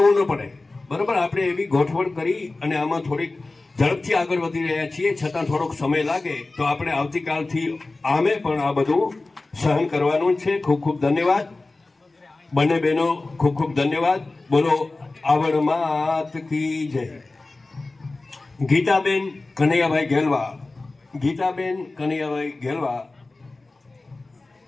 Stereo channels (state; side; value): quieter; right; 3.3 dB